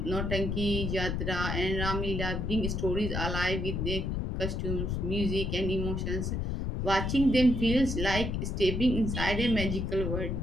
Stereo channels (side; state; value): left; noise; rumble, 1 dB below the sound